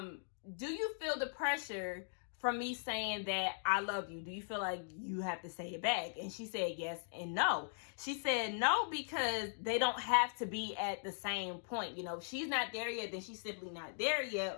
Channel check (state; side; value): silent; right; digital silence